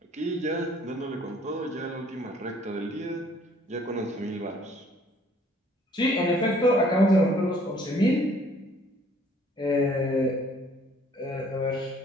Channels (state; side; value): normal; both; correlation 0.59